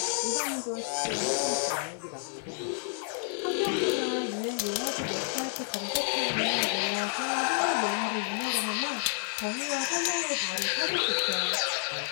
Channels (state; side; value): silent; right; digital silence